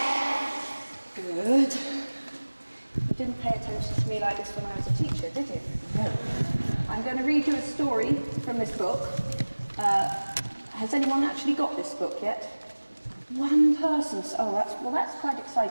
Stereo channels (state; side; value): inverted; both; correlation -1.00